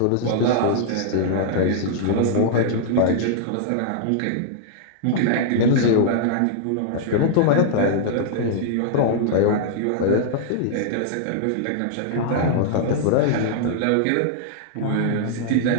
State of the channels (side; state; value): both; different; correlation -0.01